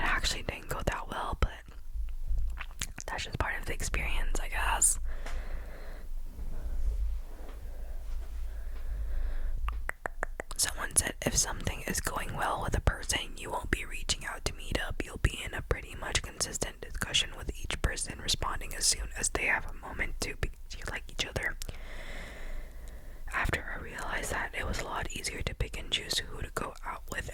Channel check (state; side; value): identical; both; correlation 1.00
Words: didn't go that well, but that's just part of the experience, I guess. Someone said, if something is going well with a person, you won't be reaching out to meet up. You'll be in a pretty much consistent discussion with each person, responding as soon as they have a moment to, because you like each other. After I realized that, it was a lot easier to pick and choose who to go out with